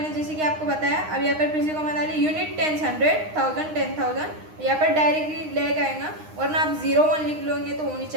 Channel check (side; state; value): left; late; 9.7 ms